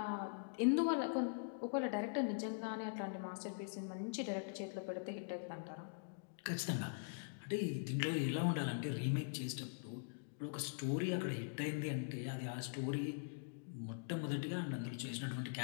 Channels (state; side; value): silent; right; digital silence